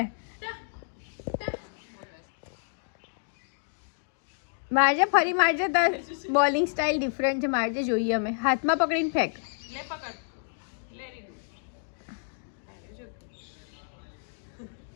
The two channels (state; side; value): silent; right; digital silence